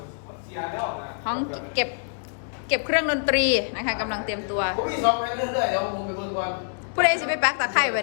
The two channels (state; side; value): silent; right; digital silence